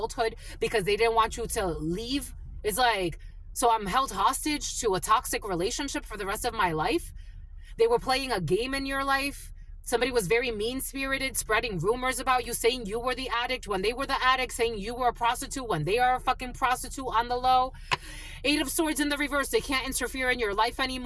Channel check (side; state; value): both; identical; correlation 1.00